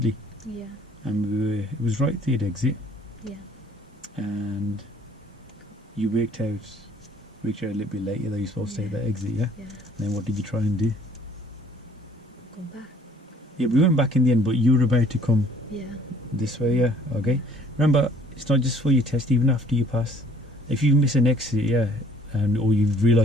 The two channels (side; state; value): both; normal; correlation 0.57